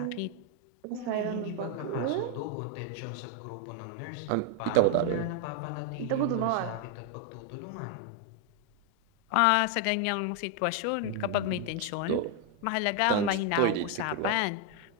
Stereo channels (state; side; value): different; both; correlation 0.01